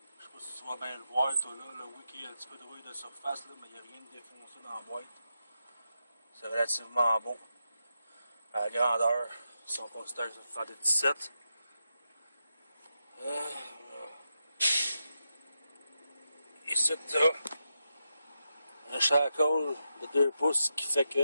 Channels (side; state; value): both; inverted; correlation -0.87